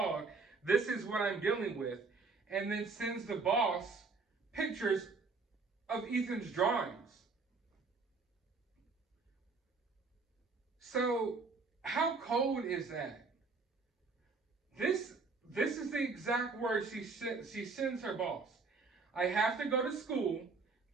this is what I'm dealing with, and then sends the boss pictures of Ethan's drawings. So how cold is that? This is the exact word she sends her boss. I have to go to school.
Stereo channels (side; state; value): left; quieter; 4.3 dB